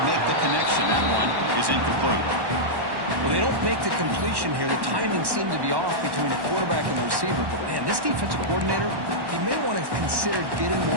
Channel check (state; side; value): late; left; 1.1 ms